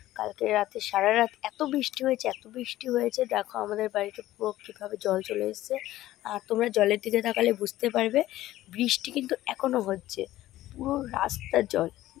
কালকে রাতে সারা রাত এত বৃষ্টি হয়েছে, দেখো আমাদের বাড়িতে পুরো কীভাবে জল চলে এসেছে। আর তোমরা জলের দিকে তাকালে বুঝতে পারবে বৃষ্টি কিন্তু এখনও হচ্ছে, পুরো রাস্তার জল।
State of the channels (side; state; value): right; quieter; 15.1 dB